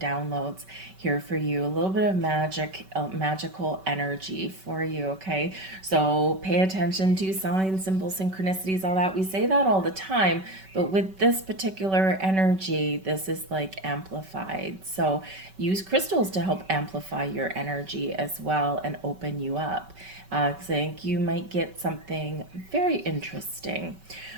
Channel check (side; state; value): left; late; 5.2 ms